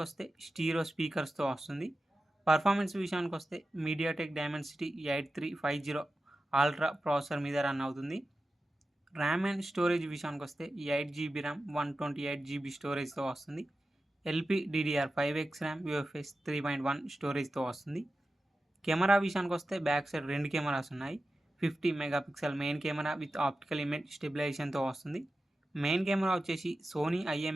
వస్తే స్టీరియో స్పీకర్స్తో వస్తుంది. పర్ఫార్మెన్స్ విషయానికి వస్తే మీడియాటెక్ డైమెన్సిటీ 8350 అల్ట్రా ప్రాసెసర్ మీద రన్ అవుతుంది. ర్యామ్ అండ్ స్టోరేజ్ విషయానికి వస్తే 8GB ర్యామ్ 128GB స్టోరేజ్తో వస్తుంది. LPDDR5X ర్యామ్ UFS 3.1 స్టోరేజ్తో వస్తుంది. కెమెరా విషయానికి వస్తే బ్యాక్ సైడ్ 2 కెమెరాస్ ఉన్నాయి. 50 megapixel main camera with optical image స్టెబిలైజేషన్తో వస్తుంది. మెయిన్ కెమెరా వచ్చేసి సోనీ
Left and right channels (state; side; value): normal; both; correlation 0.93